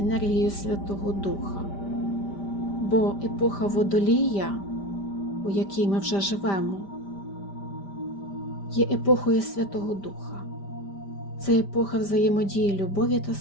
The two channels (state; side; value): late; right; 5.1 ms